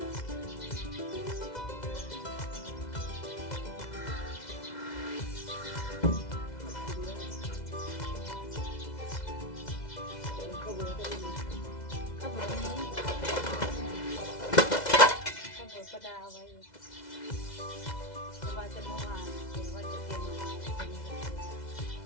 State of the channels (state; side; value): late; right; 2.0 ms